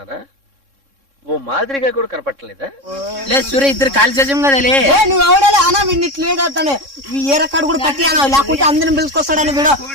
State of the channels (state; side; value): late; left; 3.6 ms